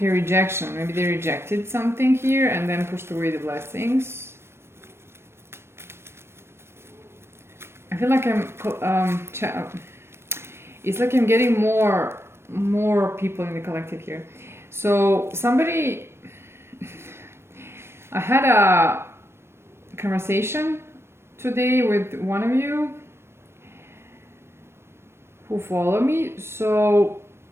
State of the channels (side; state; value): left; late; 0.12 ms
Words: rejection. Maybe they rejected something here and then pushed away the blessings. I feel like it's like I'm getting more people in the collective here. So somebody, I had a conversation today with one of you who follow me. So